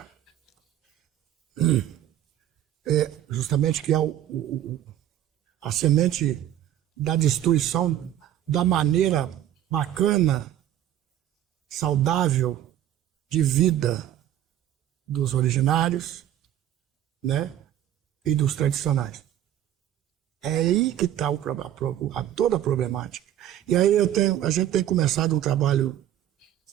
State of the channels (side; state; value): left; quieter; 11.7 dB